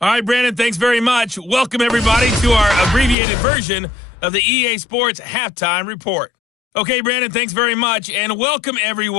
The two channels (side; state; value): right; drops out; at 3.2 s